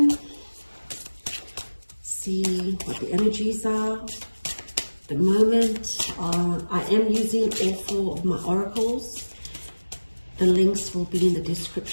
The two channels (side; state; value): both; inverted; correlation -1.00